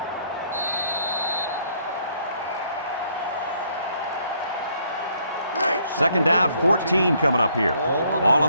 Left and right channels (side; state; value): both; inverted; correlation -0.67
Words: Second down, 14 coming up here. Ball on